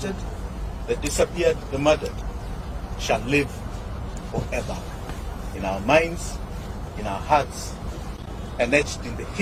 the disappeared, the murdered shall live forever in our minds, in our hearts, and etched in the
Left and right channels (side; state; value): both; identical; correlation 1.00